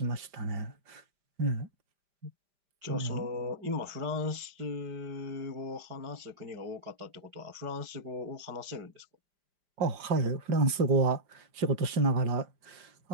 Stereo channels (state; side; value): late; left; 5.0 ms